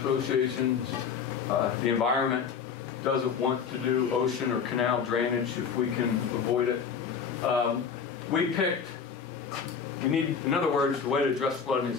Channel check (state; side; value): quieter; right; 6.5 dB